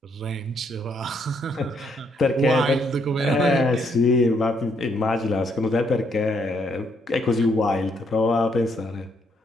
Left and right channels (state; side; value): normal; both; correlation 0.72